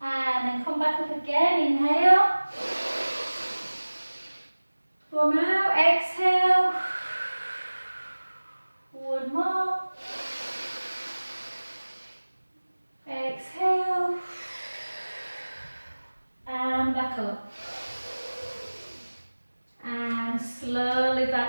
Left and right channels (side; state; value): both; inverted; correlation -1.00